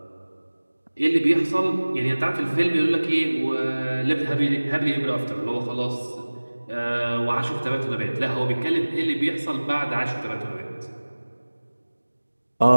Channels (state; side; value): inverted; both; correlation -1.00